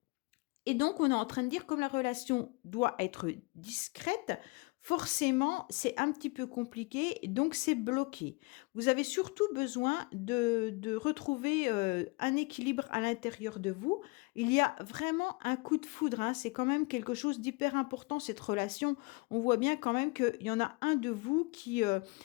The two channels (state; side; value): quieter; right; 27.2 dB